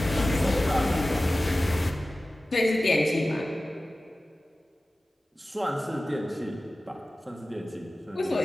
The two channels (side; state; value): both; normal; correlation 0.96